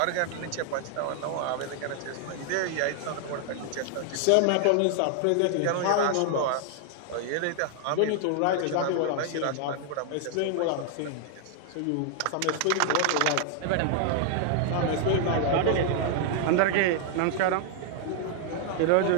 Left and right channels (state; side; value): different; both; correlation 0.00